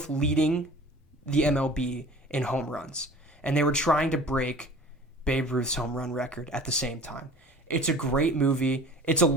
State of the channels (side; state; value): both; normal; correlation 0.43